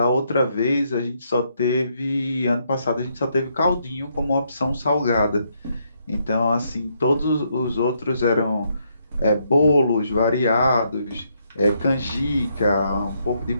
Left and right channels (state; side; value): inverted; both; correlation -0.75